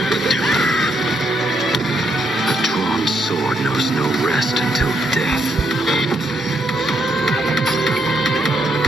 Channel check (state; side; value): normal; both; correlation 0.76